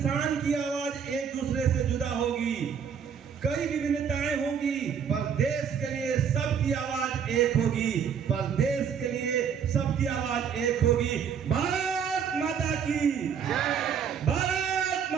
की आवाज एक दूसरे से जुदा होगी। कई विभिन्नताएं होंगी पर देश के लिए सबकी आवाज एक होगी। पर देश के लिए सबकी आवाज एक होगी। भारत माता की जय, भारत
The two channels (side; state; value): left; quieter; 7.4 dB